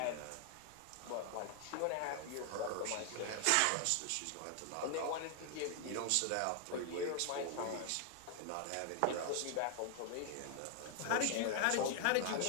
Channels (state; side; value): different; both; correlation 0.00